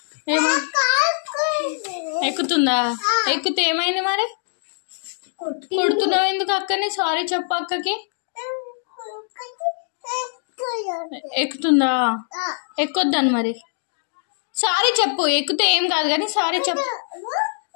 ఎక్కుతుందా? ఎక్కితే ఏమైంది మరి? కొడుతున్నావు ఎందుకు అక్కని? సారీ చెప్పు అక్కకి. ఎక్కుతుందా? ఎక్కొద్దాను మరి. సారీ చెప్పు. ఎక్కితే ఏం కాదు కానీ సారీ చెప్పు.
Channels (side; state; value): right; silent; digital silence